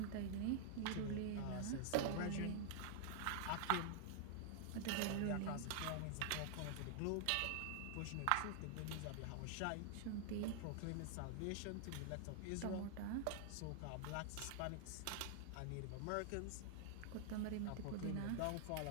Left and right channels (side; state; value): both; different; correlation -0.01